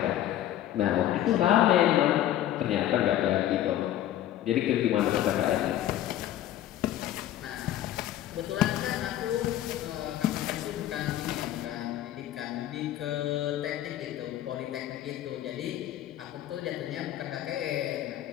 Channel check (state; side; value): quieter; right; 12.6 dB